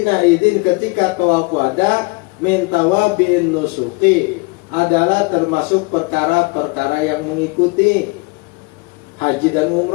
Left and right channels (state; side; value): quieter; right; 27.8 dB